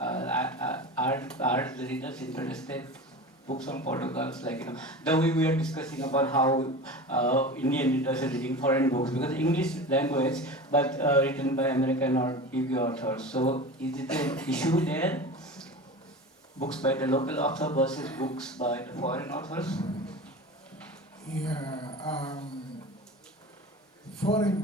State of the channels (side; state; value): both; normal; correlation 0.32